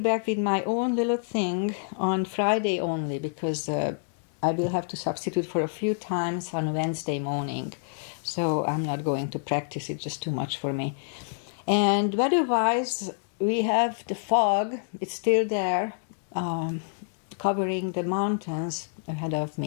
with my own little thing on Friday only, because I will have to substitute for a few times on Wednesday morning. So I'm not going to practice, it's just too much for me. And weather-wise, we have the fog, it's still there, covering the mountains ahead of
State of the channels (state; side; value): silent; right; digital silence